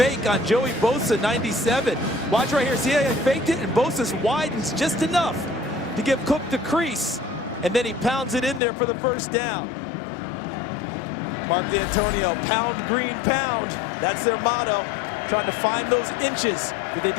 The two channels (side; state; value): right; drops out; at 8.6 s